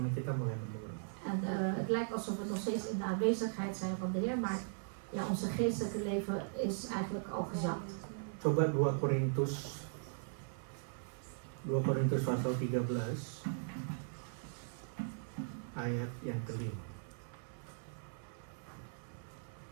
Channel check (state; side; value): silent; left; 52 dB below the other